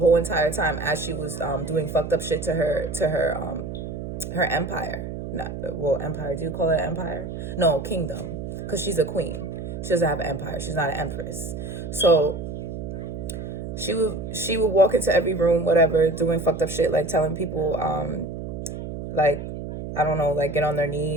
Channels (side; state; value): right; noise; hum, 7 dB below the sound